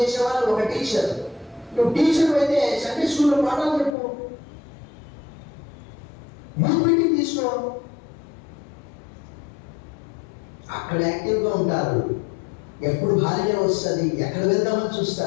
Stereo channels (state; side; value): drops out; right; at 4.0 s